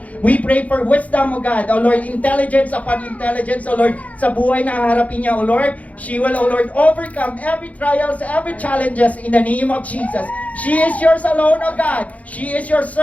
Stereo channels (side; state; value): right; late; 0.069 ms